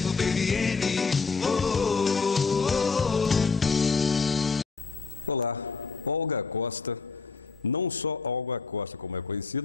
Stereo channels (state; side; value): quieter; right; 4.6 dB